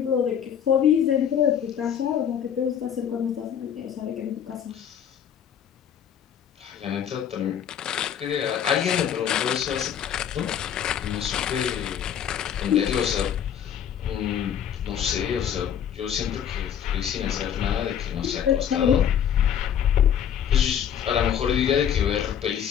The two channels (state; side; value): quieter; right; 8.9 dB